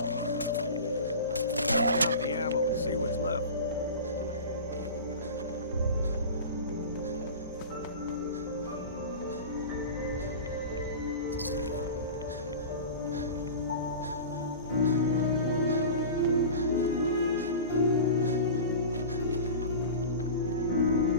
Count the ammo and see what's left.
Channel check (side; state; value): both; inverted; correlation -0.33